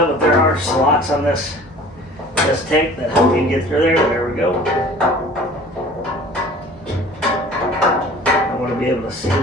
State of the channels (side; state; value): both; normal; correlation 0.46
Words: but there are slots on this tank that help you get through there. There we go. I want to be able to see